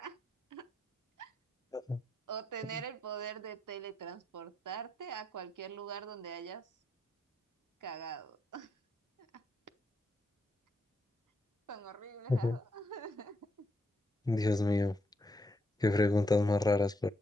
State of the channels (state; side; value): normal; both; correlation 0.79